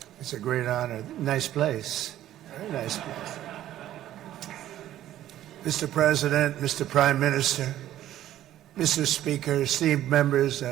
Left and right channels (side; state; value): left; quieter; 12.8 dB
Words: It's a great honor. Nice place. Very nice place. Mr. President, Mr. Prime Minister, Mr. Speaker, esteemed members